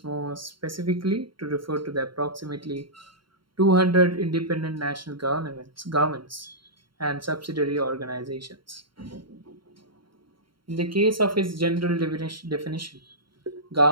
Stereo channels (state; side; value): late; left; 0.73 ms